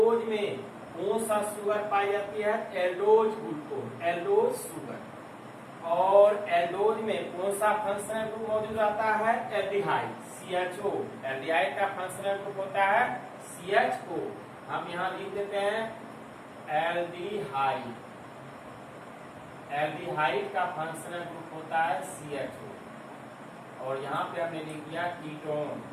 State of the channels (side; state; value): both; identical; correlation 1.00